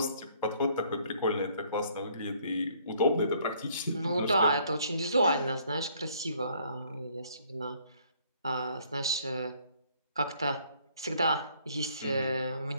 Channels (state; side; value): inverted; both; correlation -0.63